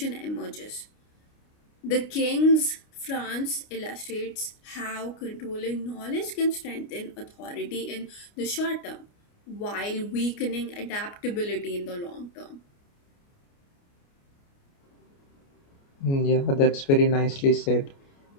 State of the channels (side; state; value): right; late; 29 ms